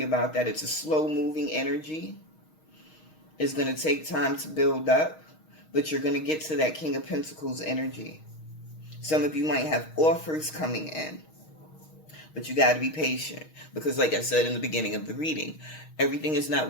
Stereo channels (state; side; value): late; right; 6.4 ms